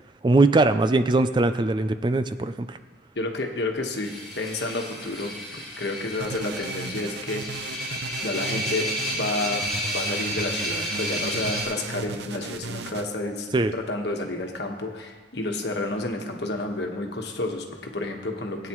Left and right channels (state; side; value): normal; both; correlation 0.48